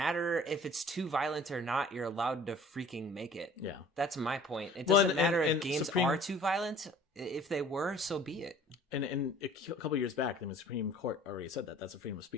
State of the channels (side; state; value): both; normal; correlation 0.49